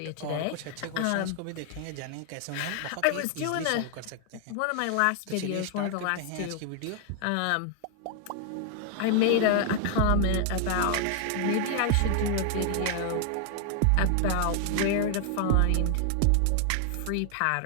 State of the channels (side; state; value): both; different; correlation 0.00